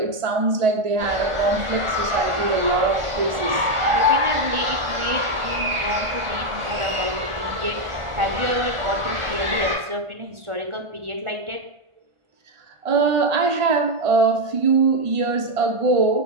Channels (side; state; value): left; late; 1.5 ms